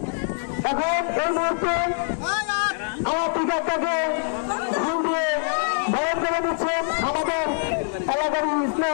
এখন এই মুহূর্তে আমার টিকাটাকে ফুল দিয়ে বরণ করে দিচ্ছেন আমাদের এলাকার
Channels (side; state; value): right; silent; 58 dB below the other